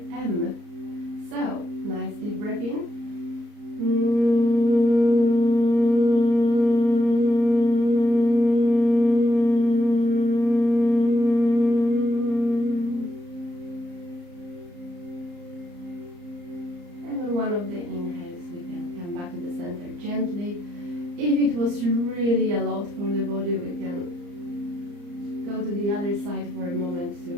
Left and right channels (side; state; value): left; late; 34 ms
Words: M. So, nice deep breath in. One of the inhales, we can come back to the center gently. If it was really a lot for the body, we can go to the other side for a moment to